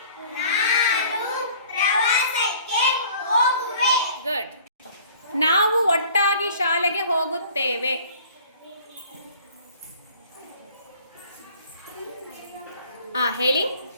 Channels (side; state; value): both; inverted; correlation -0.51